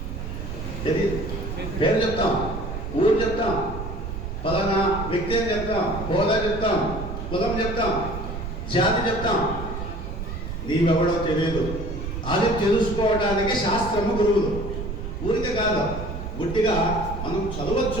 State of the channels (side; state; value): right; noise; rumble, 6 dB below the sound